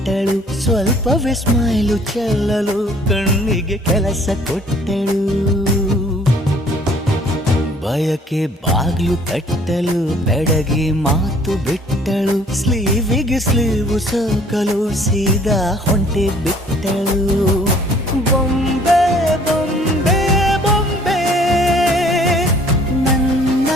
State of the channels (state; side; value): normal; both; correlation 0.57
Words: ಸ್ವಲ್ಪವೇ ಸ್ಮೈಲು ಚೆಲ್ಲಲು ಕಣ್ಣಿಗೆ ಕೆಲಸ ಕೊಟ್ಟಳು. ಬಯಕೆ ಬಾಗ್ಲು ತಟ್ಟಲು ಬೆಡಗಿ ಮಾತು ಬಿಟ್ಟಳು, ಸ್ಲೀವಿಗೆ ಸ್ಲೀವು ಸೋಕಲು ಸೀದಾ ಹೊಂಟೆ ಬಿಟ್ಟಳು. ಬೊಂಬೆ ಬೊಂಬೆ ಬೊಂಬೆ ನನ್ನ